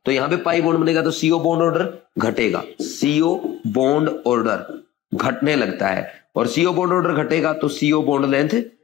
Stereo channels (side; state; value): right; quieter; 13.1 dB